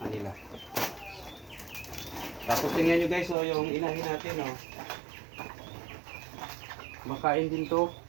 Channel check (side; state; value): left; drops out; at 3.4 s